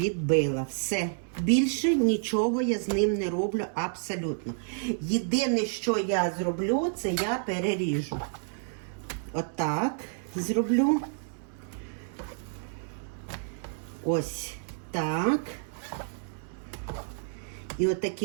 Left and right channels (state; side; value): silent; left; 58 dB below the other